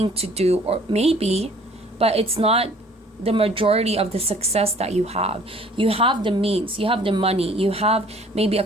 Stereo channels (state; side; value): normal; both; correlation 0.54